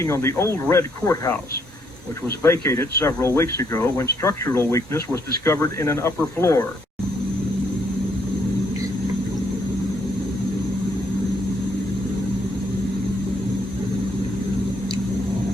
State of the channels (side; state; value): both; normal; correlation 0.71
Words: on the old red courthouse, which was vacated several weeks ago when structural weakness was discovered in an upper floor.